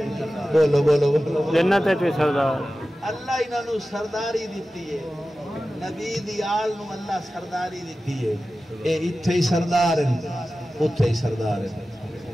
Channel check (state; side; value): normal; both; correlation 0.95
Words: بولو بولو بولو جنت ہے تو سردار اللہ انہاں نو سرداری دیتی ہے نبی دی آل نو اللہ سرداری دیتی ہے اے اتھے ہی سردار ہیں اتھے ہی سردار ہیں